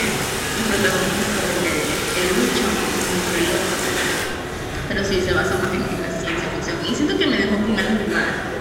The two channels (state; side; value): identical; both; correlation 1.00